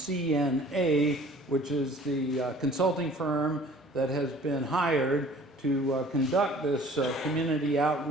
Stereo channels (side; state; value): both; normal; correlation 0.50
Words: which is the consulting firm that has been hired to conduct this community